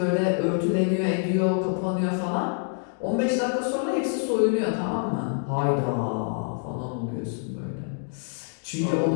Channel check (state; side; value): silent; right; 61 dB below the other